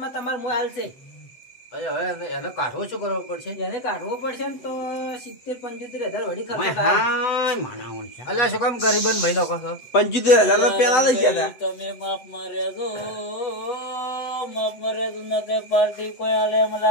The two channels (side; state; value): right; late; 8.4 ms